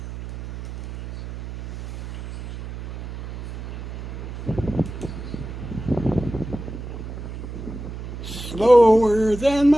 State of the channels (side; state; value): right; noise; hum, 9 dB below the sound